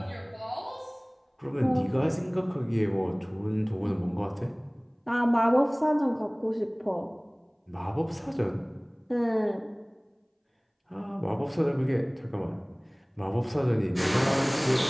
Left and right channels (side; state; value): both; identical; correlation 1.00